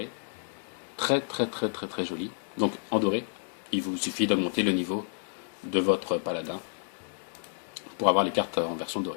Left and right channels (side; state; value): right; silent; digital silence